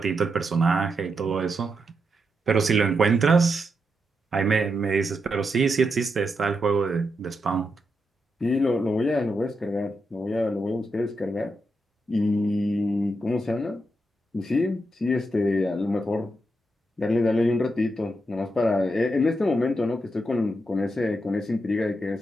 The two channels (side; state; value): both; normal; correlation 0.84